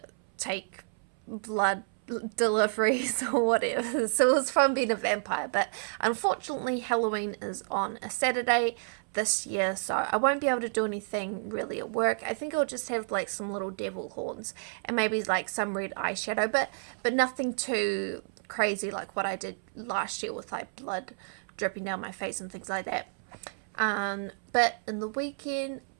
take blood deliveries or whatever. So it was fun being a vampire, but unfortunately Halloween is on a Saturday this year, so I won't be able to do anything really at work. I think I'll just have like some little devil horns and maybe like some red eyeshadow, but nothing too crazy like what I did last year with like blood dripping down my face and things like that. But in the weekend,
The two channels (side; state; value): left; silent; 58 dB below the other